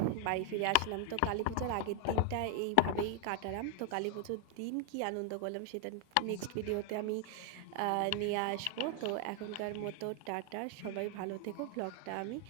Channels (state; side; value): different; both; correlation 0.00